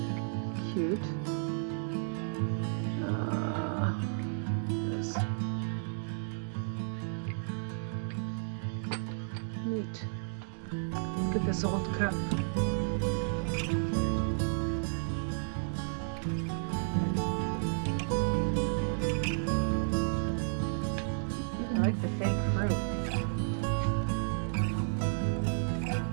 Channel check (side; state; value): left; silent; digital silence